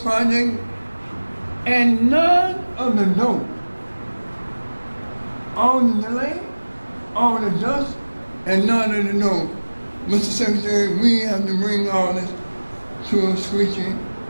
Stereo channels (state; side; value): inverted; both; correlation -1.00